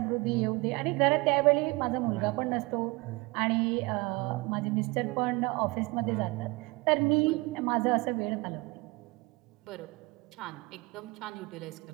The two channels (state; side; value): quieter; left; 24.9 dB